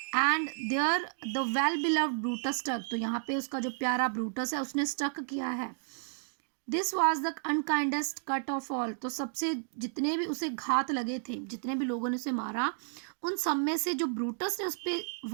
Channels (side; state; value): left; silent; digital silence